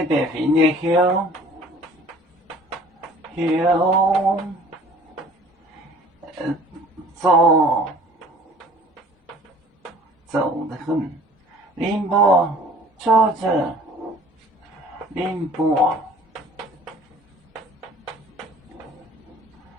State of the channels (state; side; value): normal; both; correlation 0.50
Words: 白费呢？走得很。宁波坐着，宁波